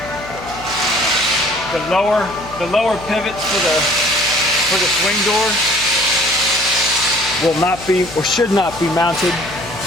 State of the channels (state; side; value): noise; left; hum, 15 dB below the sound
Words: The lower pivots for the swing door will not be or should not be mounted